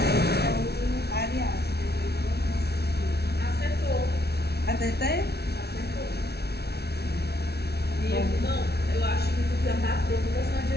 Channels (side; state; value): right; late; 0.47 ms